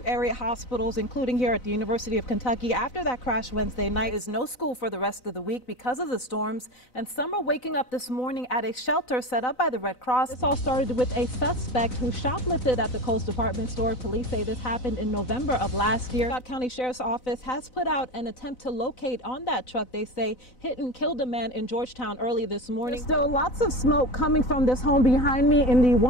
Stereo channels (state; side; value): late; right; 4.0 ms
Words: area hospitals, including here at the University of Kentucky. After that crash Wednesday night, is no school for the rest of the week because of the storms, and some are waking up this morning at a shelter set up by the Red Cross. This all started with a suspect who shoplifted at the Kohl's department store. Police say this happened in November of last year. County Sheriff's Office has put out an attempt to locate on that truck. They say hit and killed a man in Georgetown early this morning. There's still lots of smoke coming from this home behind me in the